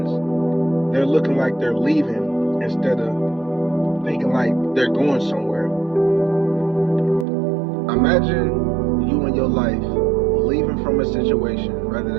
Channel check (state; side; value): drops out; left; at 7.2 s